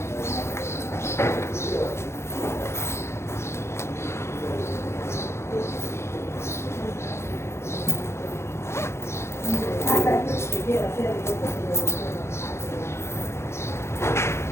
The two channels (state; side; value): late; right; 0.13 ms